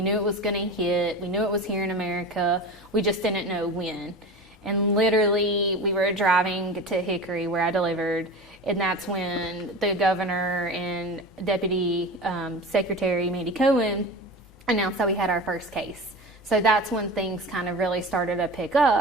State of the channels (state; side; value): normal; both; correlation 0.31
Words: knew it was going to hit. We knew it was here in America. We just didn't know when. And literally, we were driving to Hickory, where I delivered, and that's when the governor and Deputy Secretary Mandy Cohen announced that we had our first case. So that's when things kind of really started to pick